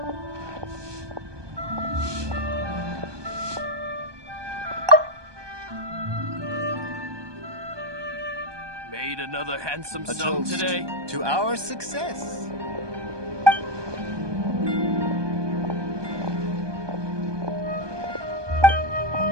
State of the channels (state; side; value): late; left; 1.2 ms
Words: Made another handsome A sum toast today. to our success.